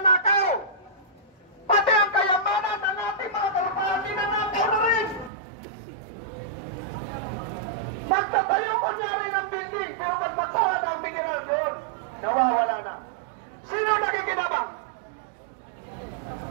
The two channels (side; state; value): left; drops out; at 5.3 s